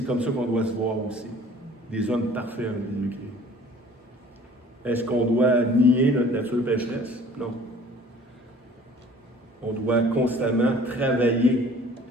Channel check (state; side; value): normal; both; correlation 0.50